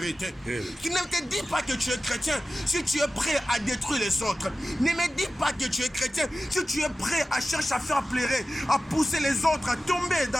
Tu ne te dis pas que tu es chrétien si tu es prêt à détruire les autres. Ne me dis pas que tu es chrétien si tu es prêt à chercher à faire pleurer, à pousser les autres, à tomber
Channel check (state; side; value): normal; both; correlation 0.95